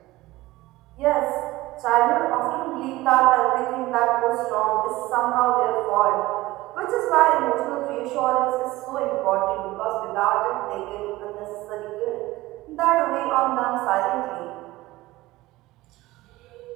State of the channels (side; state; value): left; quieter; 18.5 dB